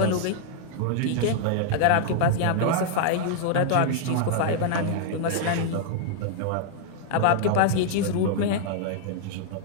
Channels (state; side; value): different; both; correlation -0.01